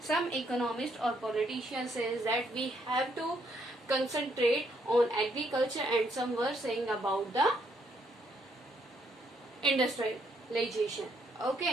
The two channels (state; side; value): normal; both; correlation 0.72